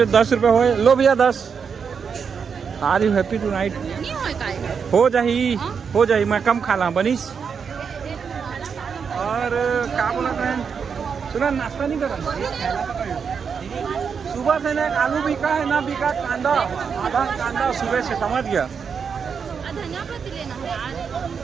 10 रुपए होए। लो भैया 10। Are you happy tonight? नहीं होए काहे? हो जाही, हो जाही। मैं कम खा ला बनीस। और क्या बोला बहन, सुना नाश्ता नहीं करा? सुबह से ना आलू बिका है ना बिका कांदा, आधा कांदा सुबह से, समझ गया? धनिया पत्ती लेना है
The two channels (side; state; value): left; quieter; 6.3 dB